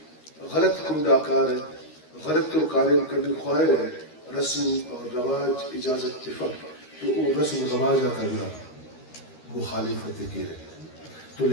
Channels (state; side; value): late; right; 13 ms